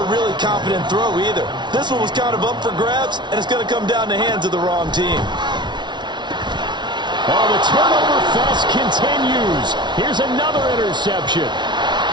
really confident throw either. This one was kind of up for grabs, and it's going to come down the hands of the wrong team. Oh, the turnover fest continues. Here's another interception.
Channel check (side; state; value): left; late; 0.22 ms